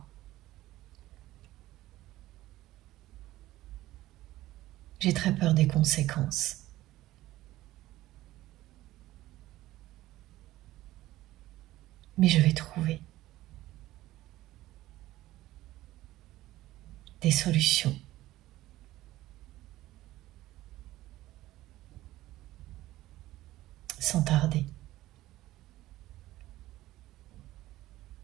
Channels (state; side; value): quieter; left; 16.1 dB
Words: J'ai très peur des conséquences. Mais je vais trouver des solutions. Sans tarder.